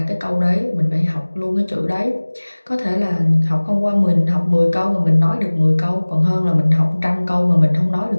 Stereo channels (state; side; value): inverted; both; correlation -1.00